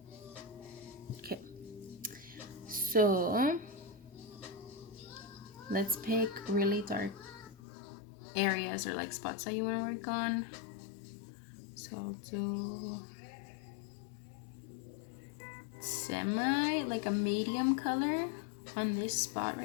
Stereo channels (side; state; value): right; drops out; at 7.6 s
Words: Okay, so let's pick really dark areas or like spots that you want to work on. So I'll do semi, like a medium color on this spot